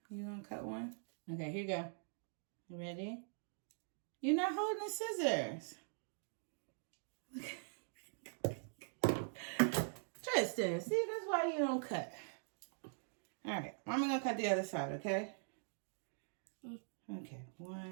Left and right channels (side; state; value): left; silent; digital silence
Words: You gonna cut one? Okay, here you go. You ready? You're not holding the scissors. Tristan, see, that's why you don't cut. All right, I'm gonna cut the other side, okay? Okay,